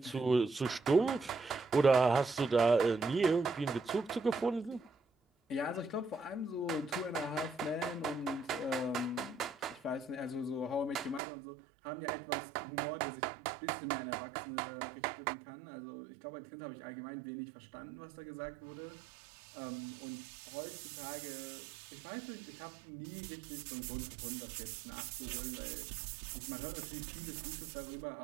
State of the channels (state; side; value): drops out; left; at 11.2 s